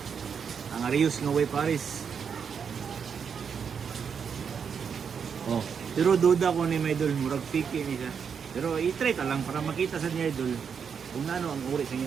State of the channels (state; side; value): quieter; left; 6.8 dB